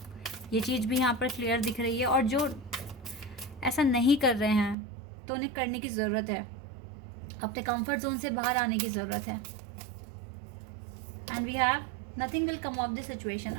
ये चीज़ भी यहाँ पर क्लियर दिख रही है। और जो ऐसा नहीं कर रहे हैं तो उन्हें करने की ज़रूरत है, अपने कंफर्ट जोन से बाहर आने की ज़रूरत है। And we have nothing will come of this situation.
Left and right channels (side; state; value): left; drops out; at 4.8 s